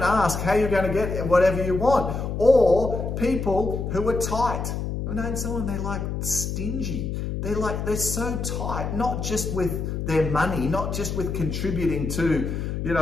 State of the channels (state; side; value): noise; left; hum, 3 dB below the sound